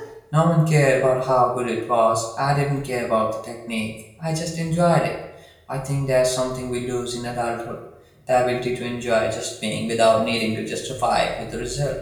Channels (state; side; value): identical; both; correlation 1.00